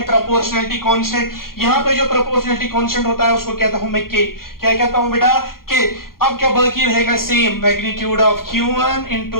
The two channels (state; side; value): late; right; 0.92 ms